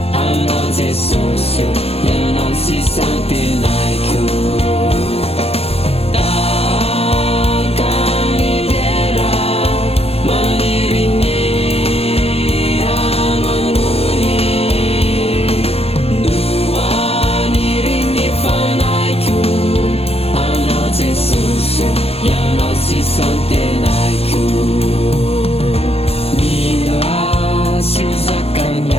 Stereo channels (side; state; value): right; late; 0.29 ms